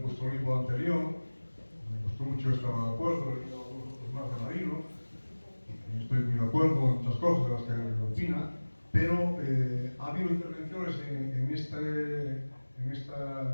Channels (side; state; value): both; inverted; correlation -1.00